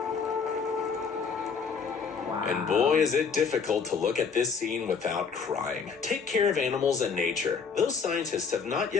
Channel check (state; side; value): quieter; right; 5.7 dB